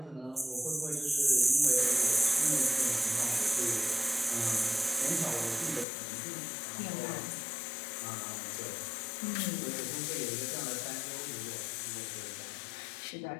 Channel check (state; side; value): drops out; right; at 5.9 s